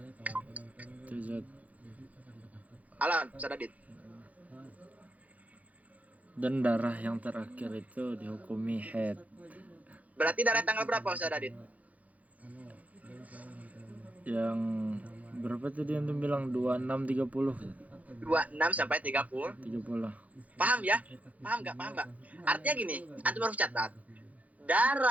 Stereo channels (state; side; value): late; left; 0.072 ms